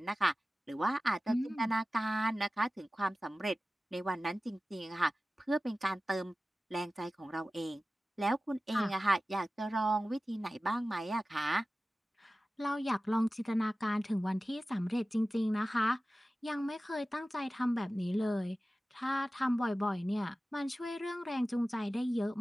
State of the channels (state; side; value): normal; both; correlation 0.96